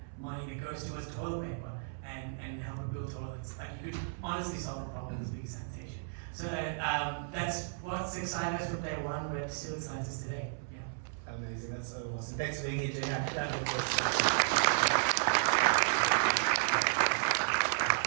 money that goes towards toilet paper and help it build toilets, you could honestly solve the problem as big as sanitation. So that's what's excited us from day one, but still excites us today. Yeah. Amazing, that's so awesome. Thanks for being here, Gina.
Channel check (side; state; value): left; silent; 55 dB below the other